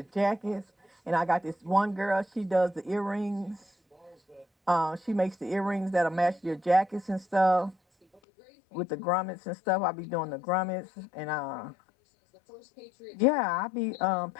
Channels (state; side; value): drops out; right; at 8.2 s